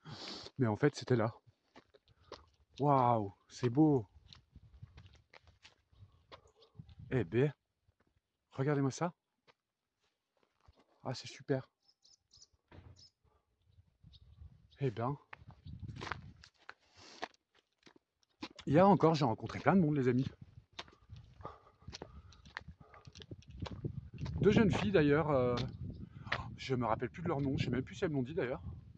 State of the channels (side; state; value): both; identical; correlation 1.00